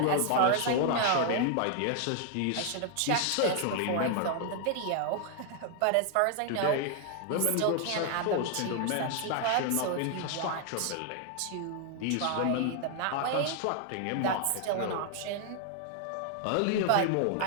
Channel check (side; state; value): both; different; correlation 0.00